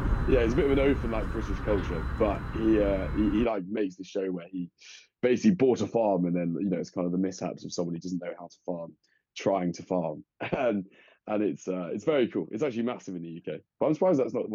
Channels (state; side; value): identical; both; correlation 1.00